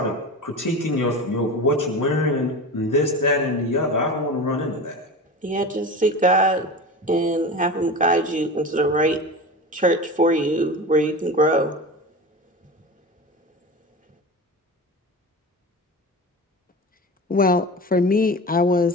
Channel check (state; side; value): normal; both; correlation 0.29